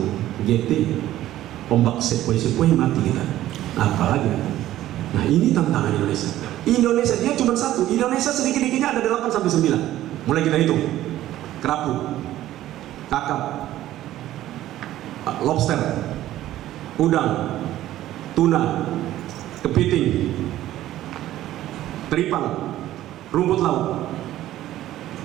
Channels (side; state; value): left; quieter; 13.9 dB